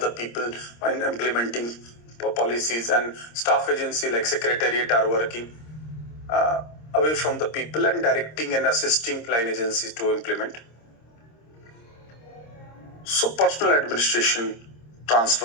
people in implementing policies, and staff agency like secretariat are working away from the people and directing and assisting line agencies to implement. So personal administration,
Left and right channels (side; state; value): right; late; 26 ms